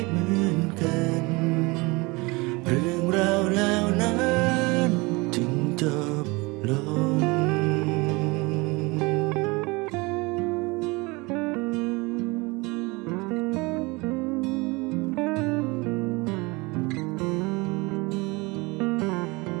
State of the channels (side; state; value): left; quieter; 25.3 dB